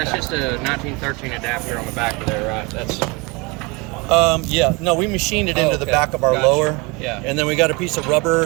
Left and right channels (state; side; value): quieter; left; 27.1 dB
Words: cut. just a 1913 adapter on the back of there, right? That's Yeah, no, we machined it into the okay. back of our Gotcha. lower. Yeah. And then we got a piece of rubber